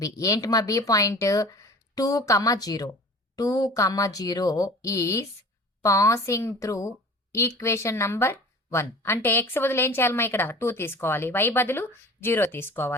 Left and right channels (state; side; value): normal; both; correlation 0.42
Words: ఏంటి మా B point? 2,0 is passing through equation number 1. అంటే ఎక్స్ బదులు ఏం చేయాలమ్మా? ఇక్కడ 2 తీసుకోవాలి. వై బదులు 0